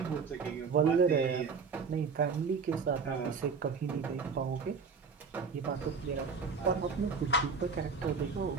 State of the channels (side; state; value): left; quieter; 5.2 dB